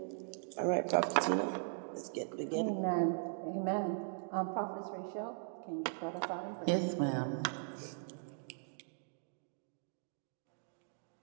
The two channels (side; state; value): left; silent; digital silence